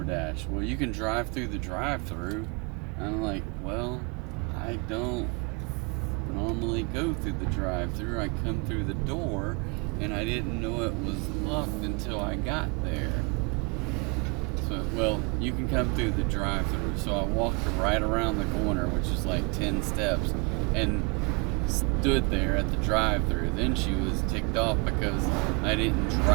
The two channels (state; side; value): quieter; left; 32.6 dB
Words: Well, you can drive through the drive-through. I'm like, well, I don't normally go through the drive-through. I come through the door, and I didn't know it was locked until I got there. So, well, you can come through the drive-through. So I walked right around the corner, which is like 10 steps, and stood there at the drive-through. Then she was ticked off because I didn't